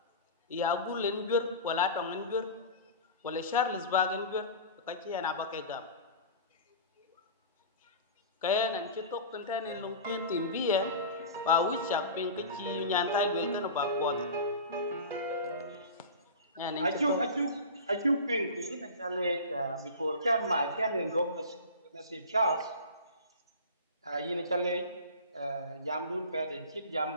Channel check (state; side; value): inverted; both; correlation -0.33